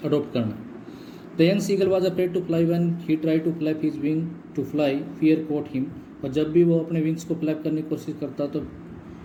अडोप्ट करना। The young seagull was afraid to fly when he try to flap his wing to fly, fear caught him. और जब भी वो अपने विंग्स को फ्लैप करने की कोशिश करता तो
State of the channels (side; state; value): both; identical; correlation 1.00